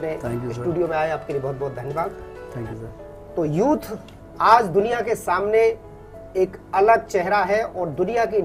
स्टूडियो में आए, आपके लिए बहुत बहुत धन्यवाद। Thank you sir. तो यूथ आज दुनिया के सामने एक अलग चेहरा है और दुनिया की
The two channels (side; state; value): both; identical; correlation 1.00